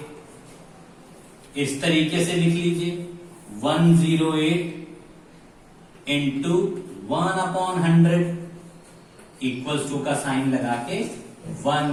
इस तरीके से लिख लीजिए, 108 इंटू 1/100 इक्वल्स टू का साइन लगा के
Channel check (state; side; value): identical; both; correlation 1.00